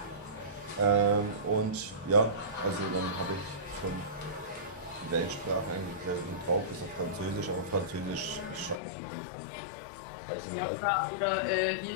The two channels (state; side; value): drops out; right; at 8.8 s